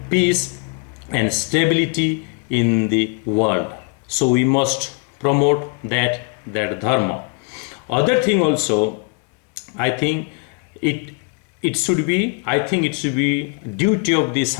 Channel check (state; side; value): quieter; right; 33.3 dB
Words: peace and stability in the world. So we must promote that dharma. Other thing also, I think it should be duty of the